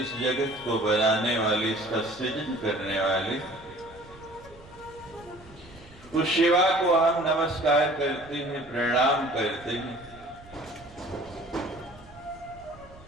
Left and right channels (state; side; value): noise; right; rumble, 22 dB below the sound